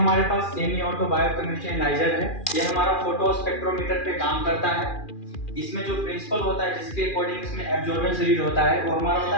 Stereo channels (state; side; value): late; right; 2.4 ms